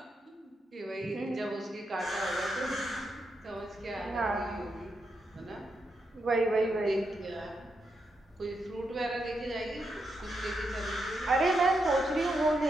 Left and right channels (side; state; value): both; normal; correlation 0.83